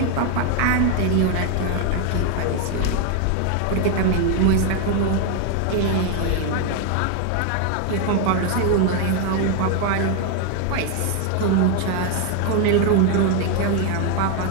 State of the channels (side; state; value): both; different; correlation 0.01